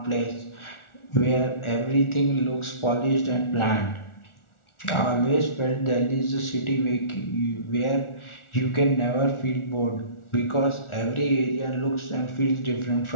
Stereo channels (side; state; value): right; late; 1.4 ms